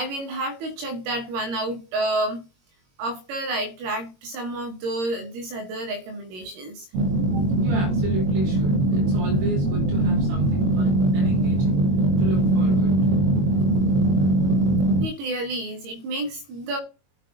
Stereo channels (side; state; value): left; late; 22 ms